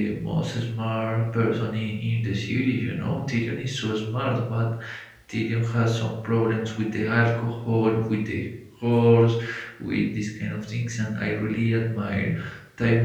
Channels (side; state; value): both; identical; correlation 1.00